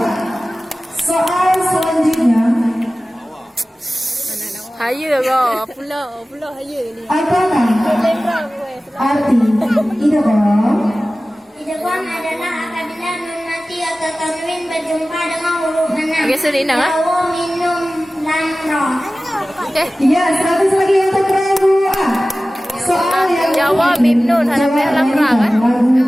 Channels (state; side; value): normal; both; correlation 0.96